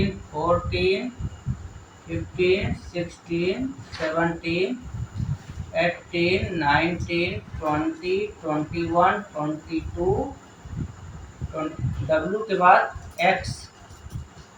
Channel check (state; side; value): identical; both; correlation 1.00